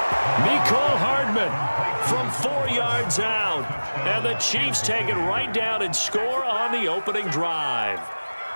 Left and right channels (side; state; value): both; inverted; correlation -1.00